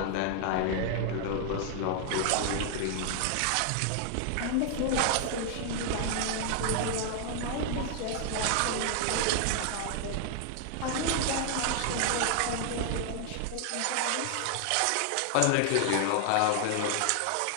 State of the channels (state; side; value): different; both; correlation 0.00